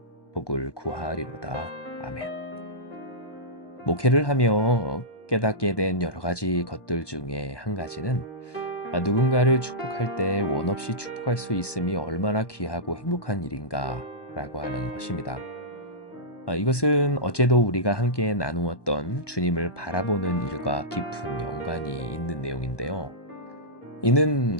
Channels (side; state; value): right; late; 1.2 ms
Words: 복을 구하리로다. 아멘. 목회를 하며 깨닫게 된 여러 가지 것들 중에 한 가지는 누군가를 축복할 때 원 없이 축복할 수 있음이 얼마나 귀하고 행복한 일인가 라고 하는 것입니다. 이것은 어제도 우리가 함께 나누었던 주님을 바라보는 일과 깊은 연관이 있는 내용인데요. 이는